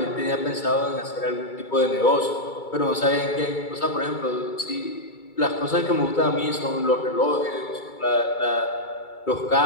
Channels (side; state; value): right; late; 2.3 ms